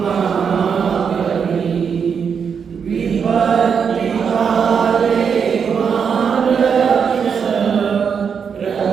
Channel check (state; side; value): quieter; left; 6.7 dB